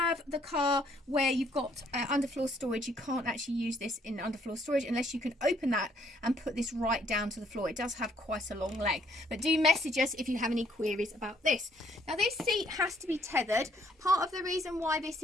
the car where you've got underfloor storage, you can't actually use this in underfloor storage unless you can open that and put this right down to the floor. It does have quite a long leg. But do message us if you have any queries about this. Now this seat has to be tethered. Part of the reason why this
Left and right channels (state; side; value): normal; both; correlation 0.66